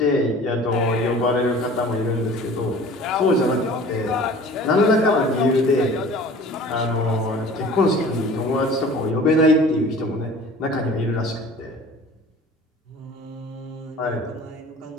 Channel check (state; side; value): normal; both; correlation 0.45